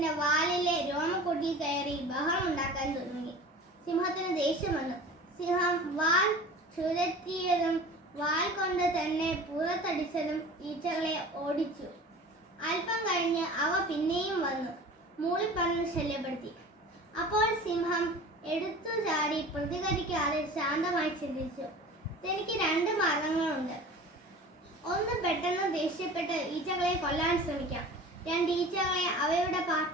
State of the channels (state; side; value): normal; both; correlation 0.40